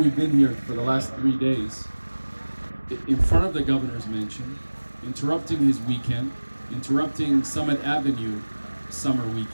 been here for the last 3 days, in front of the governor's mansion, interrupting his weekend, interrupting Summit Avenue summer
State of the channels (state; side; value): inverted; both; correlation -1.00